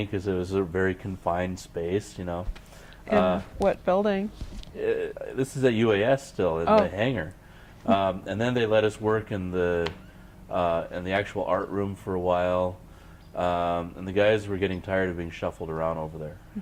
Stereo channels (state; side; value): identical; both; correlation 1.00